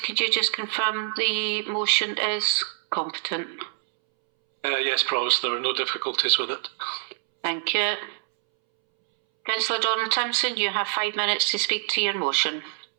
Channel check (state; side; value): silent; left; 61 dB below the other